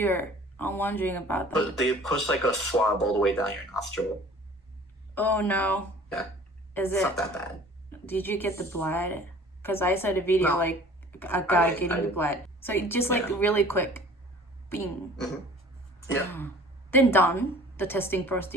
I'm wondering about that. But they pushed a swab all the way down your nostril. Oh no. Yeah. It's not that bad. Did you get the blood? Because I saw the video a guy getting the blood. So it just really quick. Bing. Yeah. Then done. The testing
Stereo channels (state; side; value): normal; both; correlation 0.48